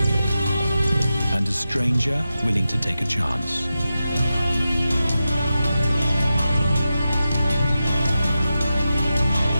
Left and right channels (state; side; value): inverted; both; correlation -0.91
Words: and a stranger willing to take a chance.